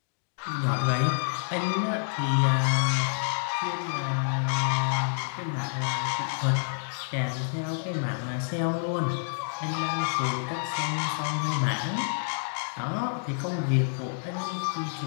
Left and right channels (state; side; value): silent; right; digital silence